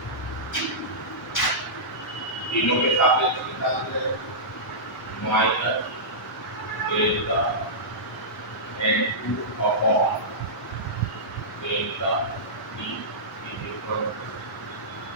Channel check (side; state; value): both; normal; correlation -0.16